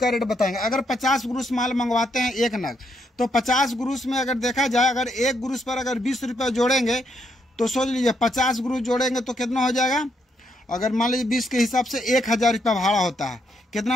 रेट बताएंगे। अगर 50 ग्रोस माल मंगवाते हैं एक नग, तो 50 ग्रोस में अगर देखा जाए, अगर एक ग्रोस पर अगर 20 रुपये जोड़ेंगे तो सोच लीजिए 50 ग्रोस जोड़ेंगे तो कितना हो जाएगा। अगर मान लीजिए 20 के हिसाब से 1000 रुपया भाड़ा होता है।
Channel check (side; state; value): both; normal; correlation 0.76